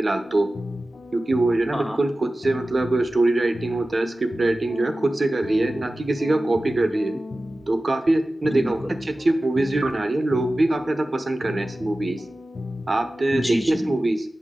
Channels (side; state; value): both; normal; correlation 0.96